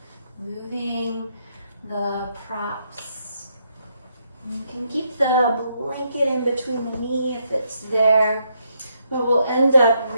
moving the props. You can keep the blanket in between the knee if it's there, but we'll end up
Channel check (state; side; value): inverted; both; correlation -0.77